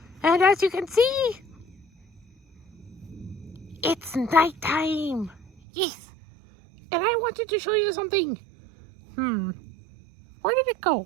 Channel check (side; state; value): left; drops out; at 5.5 s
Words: And as you can see, it's nighttime. Yes. And I wanted to show you something. Where did it